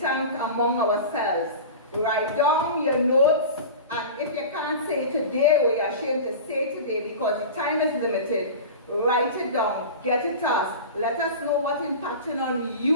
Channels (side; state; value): both; inverted; correlation -0.32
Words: among ourselves. Write down your notes, and if you can't say it today or you're ashamed to say it today because the time is limited, write it down, get it to us. Let us know what's impacting on